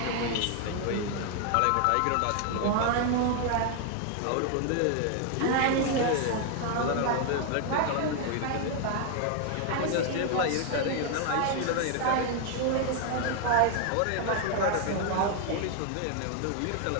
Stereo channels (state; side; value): different; both; correlation 0.00